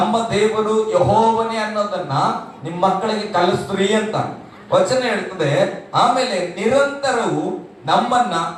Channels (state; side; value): identical; both; correlation 1.00